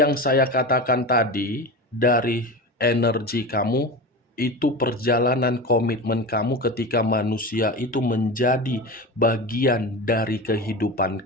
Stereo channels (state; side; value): normal; both; correlation 0.27